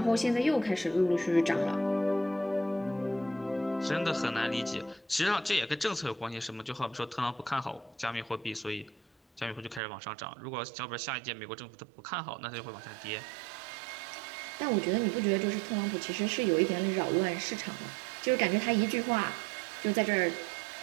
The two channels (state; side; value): drops out; left; at 9.8 s